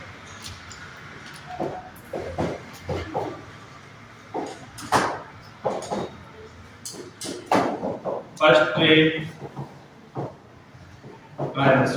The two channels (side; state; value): both; identical; correlation 1.00